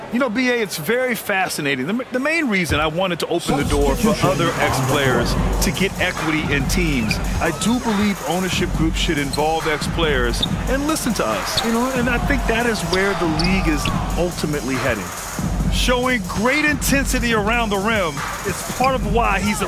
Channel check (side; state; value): both; identical; correlation 1.00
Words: You know, B.A., it's very fascinating. The main reason I wanted to open the door for other ex-players to get equity in teams, I do believe ownership groups should involve ex-players and listen to us. You know, and I think that is where the league is ultimately heading. Showing great intensity around the rim is part of why he's a